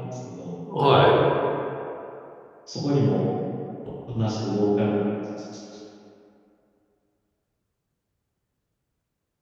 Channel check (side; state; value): both; identical; correlation 1.00